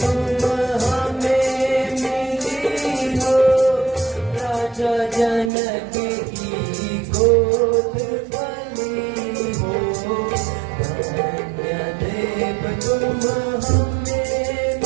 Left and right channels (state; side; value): drops out; left; at 5.5 s